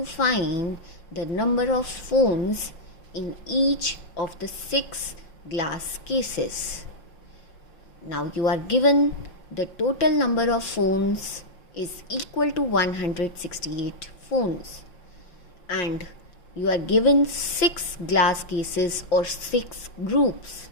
find the number of phones in each of the 6 glass cases. Now you are given the total number of phones is equal to 168 phones, and you are given 6 glass cases or 6 groups.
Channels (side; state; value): right; late; 5.6 ms